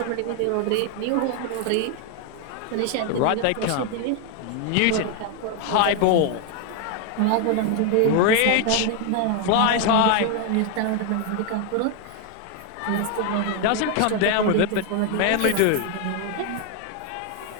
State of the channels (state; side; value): different; both; correlation 0.01